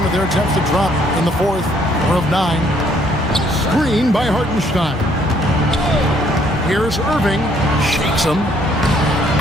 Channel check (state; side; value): normal; both; correlation 0.65